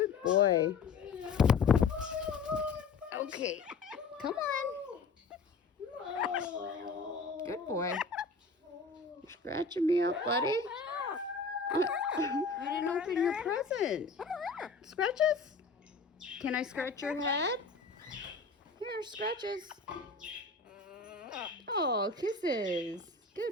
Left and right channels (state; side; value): quieter; right; 4.5 dB